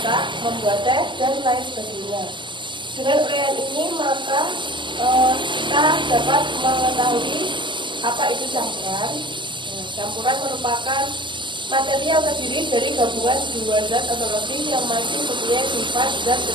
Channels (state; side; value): late; left; 0.23 ms